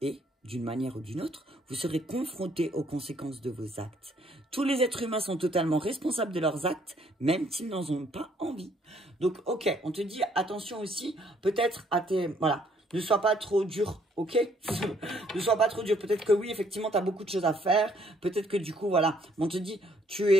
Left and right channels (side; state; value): both; normal; correlation 0.66